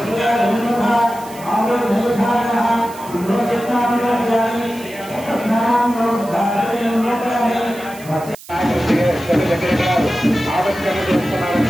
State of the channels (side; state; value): right; noise; hiss, 19 dB below the sound